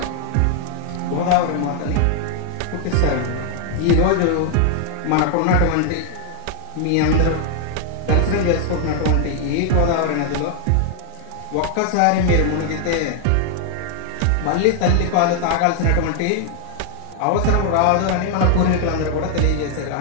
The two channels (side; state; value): both; different; correlation 0.00